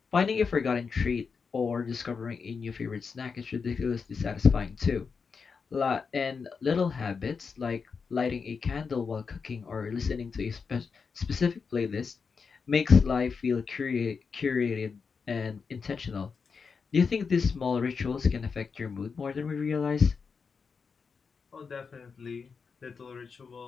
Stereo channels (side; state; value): right; quieter; 5.4 dB